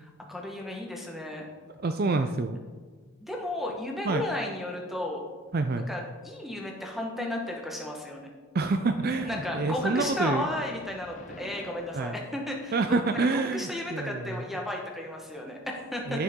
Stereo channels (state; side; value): normal; both; correlation 0.53